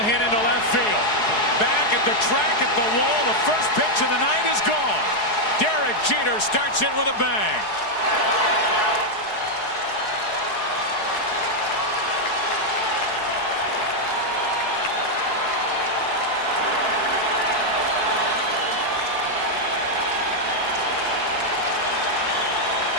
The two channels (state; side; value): late; right; 4.7 ms